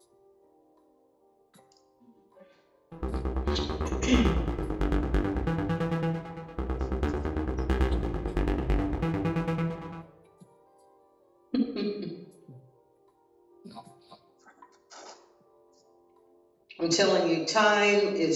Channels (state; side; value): identical; both; correlation 1.00